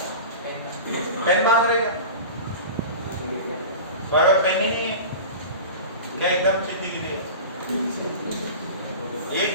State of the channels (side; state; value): both; inverted; correlation -0.32